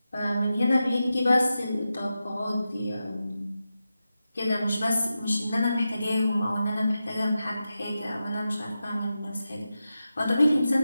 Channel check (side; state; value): both; inverted; correlation -0.91